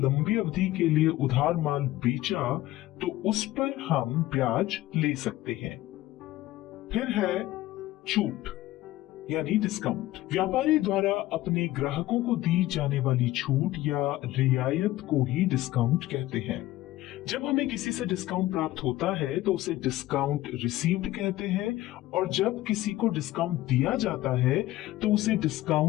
अवधि के लिए उधार माल बेचा तो उस पर हम ब्याज ले सकते हैं। फिर है छूट यानी डिस्काउंट। व्यापारी द्वारा अपने ग्राहकों को दी जाने वाली छूट या रियायत को ही डिस्काउंट कहते हैं। जब हमें किसी से डिस्काउंट प्राप्त होता है तो उसे डिस्काउंट रिसीव्ड कहते हैं, और जब किसी को डिस्काउंट दिया जाता है तो उसे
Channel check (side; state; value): right; quieter; 16.2 dB